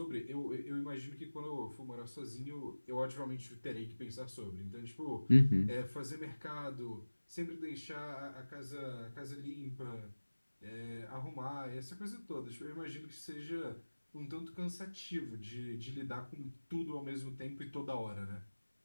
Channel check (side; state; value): both; inverted; correlation -1.00